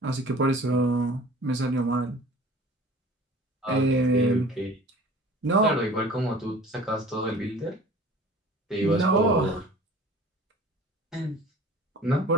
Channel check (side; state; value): both; normal; correlation 0.45